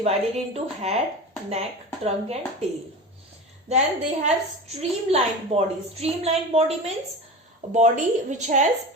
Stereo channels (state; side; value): normal; both; correlation 0.29